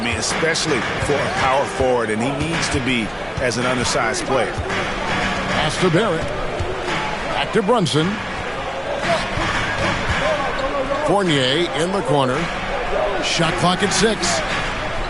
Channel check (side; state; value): both; identical; correlation 1.00